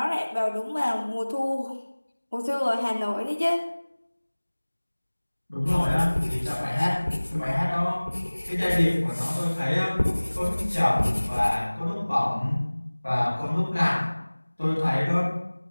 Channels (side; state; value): both; inverted; correlation -1.00